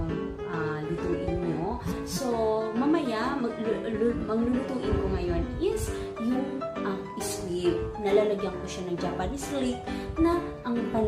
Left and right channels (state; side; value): identical; both; correlation 1.00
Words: lutuin nyo. So, mamaya, maglulutuin ko ngayon is yung squib. Nalalagyan ko siya ng Japanese leek na ang